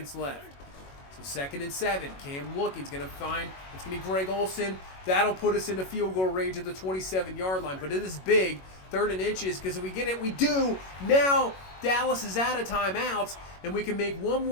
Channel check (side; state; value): right; late; 21 ms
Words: left. So 2nd and 7. Cam looking. He's going to find, it's going to be Greg Olsen. That'll put us into field goal range at the 27-yard line. But it is big. 3rd and inches, because if we get it, we do. Now Dallas is out of timeouts, and we can make one